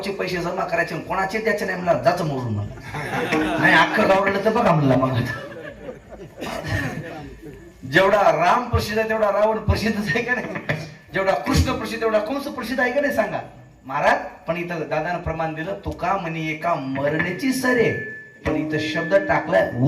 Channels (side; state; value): both; identical; correlation 1.00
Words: पैसे जमा करायचे, कोणाचे द्यायचे नाही म्हणलं, जाचं मोडून म्हणलं. नाही अख्खं गाव रडलं तर बघा म्हणलं. मग जेवढा राम प्रसिद्ध आहे तेवढा रावण प्रसिद्धच आहे का नाही? जेवढा कृष्ण प्रसिद्ध तेवढा कंस प्रसिद्ध आहे का नाही सांगा महाराज. पण इथं दादानं प्रमाण दिलं तुका म्हणे एका मरण्याची सरे, पण इथं शब्द टाकलाय